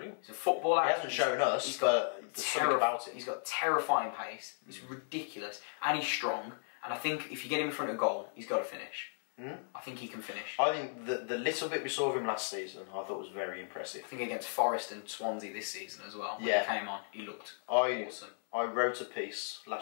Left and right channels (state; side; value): silent; right; 54 dB below the other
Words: He's a footballer. He hasn't shown us, he's got something about it. He's got terrifying pace. It's ridiculous. And he's strong. And I think if you get him in front of goal, he's got to finish. I think he can finish. I think the little bit we saw of him last season, I thought was very impressive. I think against Forest and Swansea this season as well. When he came on, he looked awesome. I wrote a piece